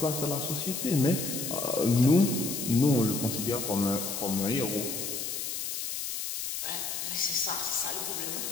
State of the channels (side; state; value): left; noise; hiss, 4 dB below the sound